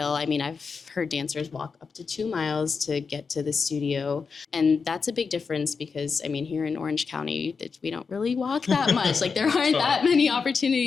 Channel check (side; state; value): right; quieter; 5.2 dB